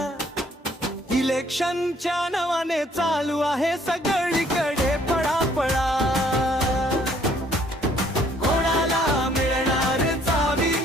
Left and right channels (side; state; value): both; normal; correlation 0.62